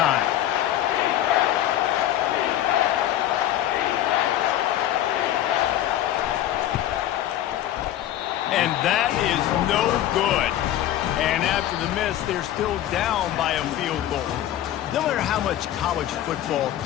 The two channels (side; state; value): right; quieter; 12.5 dB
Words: And that is no good. And after the miss, they're still down by a field goal. No matter how much college football